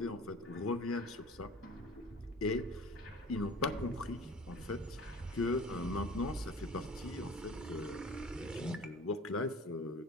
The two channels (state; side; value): normal; both; correlation 0.43